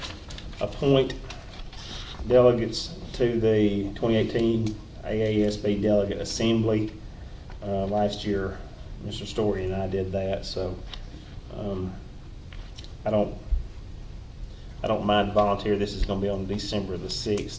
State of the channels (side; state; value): both; identical; correlation 1.00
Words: appoint delegates to the 2018 AASB Delegate Assembly. Last year, Mr. Story and I did that, so I don't mind volunteer. This is going to be on December the